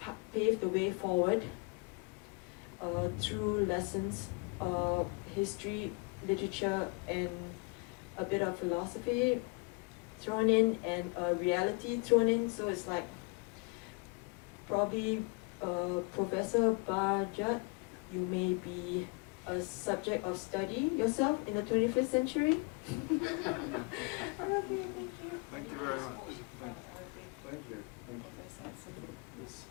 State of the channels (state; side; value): quieter; right; 31.0 dB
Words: pave the way forward through lessons, history, literature, and a bit of philosophy thrown in, and reality thrown in. So it's like probably Professor Bajat, you may be a subject of study yourself in the 21st century. Okay, thank you. Thank you very much. Thank you. Thank you. Yes.